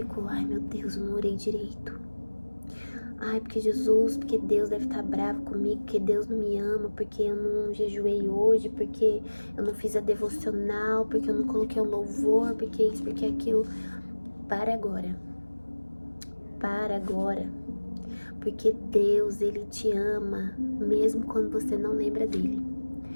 ai meu Deus, eu não orei direito. Ai, porque Jesus, porque Deus deve estar bravo comigo, porque Deus não me ama, porque eu não jejuei hoje, porque eu não fiz a devocional, porque eu não coloquei um louvor, porque isso, porque aquilo. Para agora. Para agora. Porque Deus, Ele te ama, mesmo quando você não lembra dEle.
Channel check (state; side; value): inverted; both; correlation -1.00